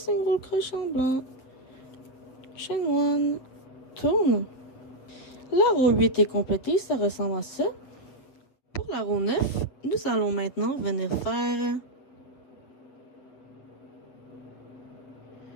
crochet en blanc. Chain 1. Tourne. La roue 8 est complétée, ça ressemble à ça. Pour la roue 9, nous allons maintenant venir faire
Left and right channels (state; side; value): late; right; 7.7 ms